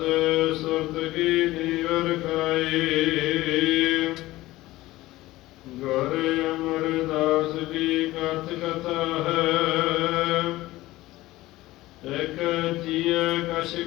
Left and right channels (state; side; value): quieter; right; 17.6 dB